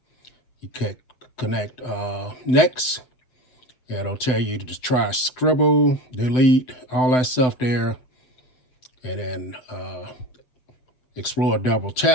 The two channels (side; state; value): right; late; 7.9 ms